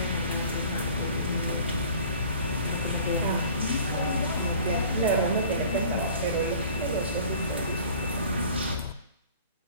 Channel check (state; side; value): inverted; both; correlation -0.47